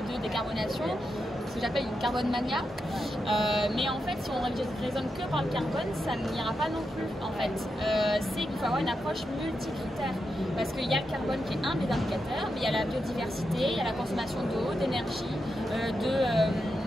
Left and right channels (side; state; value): both; normal; correlation 0.86